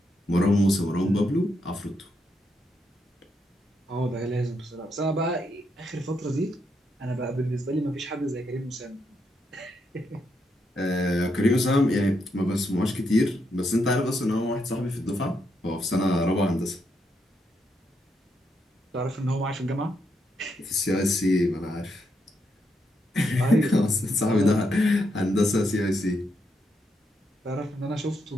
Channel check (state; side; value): normal; both; correlation 0.80